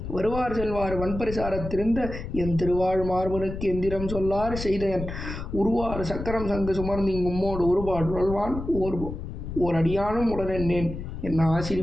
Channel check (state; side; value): noise; left; rumble, 8 dB below the sound